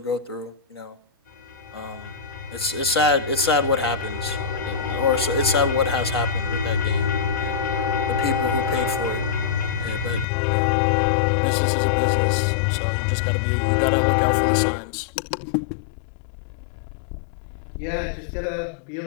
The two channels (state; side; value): drops out; right; at 10.2 s